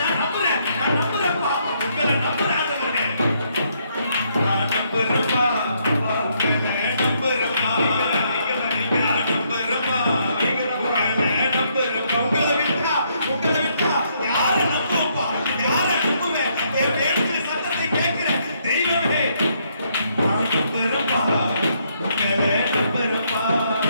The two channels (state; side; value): inverted; both; correlation -0.73